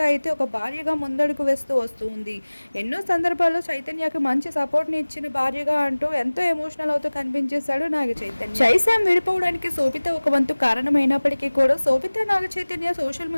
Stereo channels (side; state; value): both; inverted; correlation -1.00